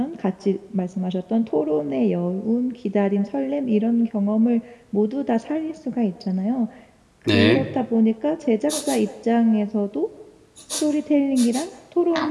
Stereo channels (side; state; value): both; identical; correlation 1.00